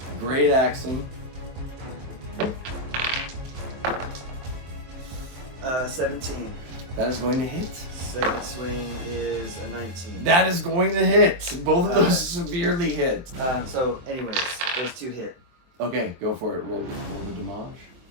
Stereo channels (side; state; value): left; late; 23 ms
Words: Great Axum. 17. That is going to hit. Second swing is a 19. That is going to hit. Both of those severely hit. So, anyways, those two hit. Okay, go for it. Roll the damage.